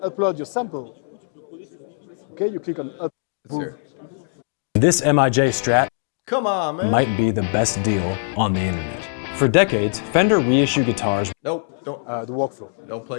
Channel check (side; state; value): right; silent; digital silence